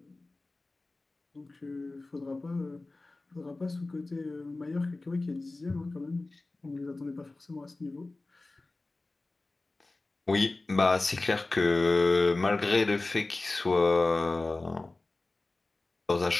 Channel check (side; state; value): right; quieter; 3.1 dB